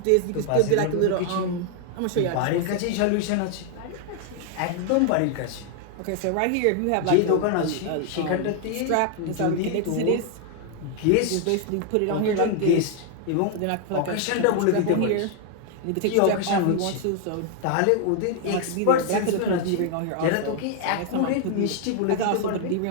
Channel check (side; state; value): both; different; correlation 0.00